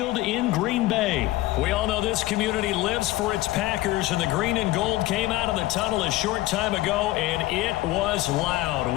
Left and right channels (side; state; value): right; quieter; 17.7 dB